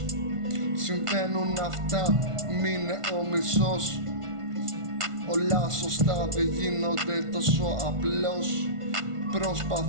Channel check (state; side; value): late; left; 1.5 ms